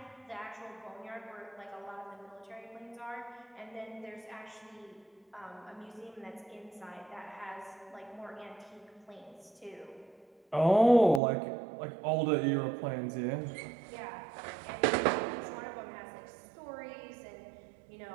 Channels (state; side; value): drops out; left; at 11.2 s